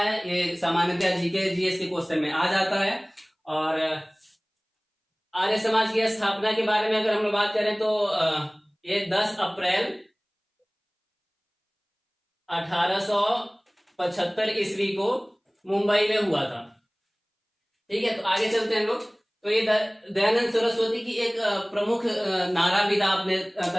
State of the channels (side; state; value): both; identical; correlation 1.00